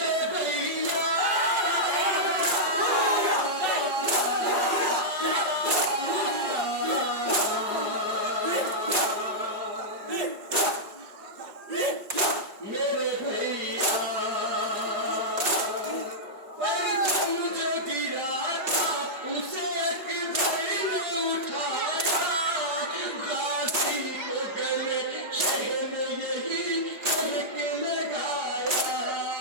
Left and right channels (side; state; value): left; late; 5.3 ms